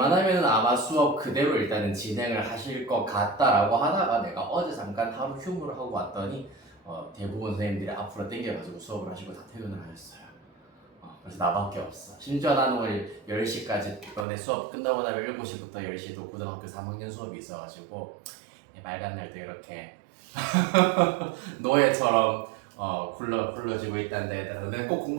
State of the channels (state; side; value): drops out; left; at 14.2 s